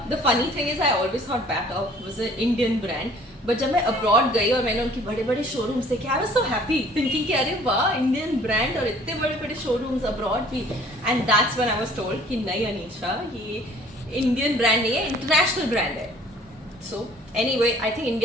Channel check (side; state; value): both; normal; correlation 0.54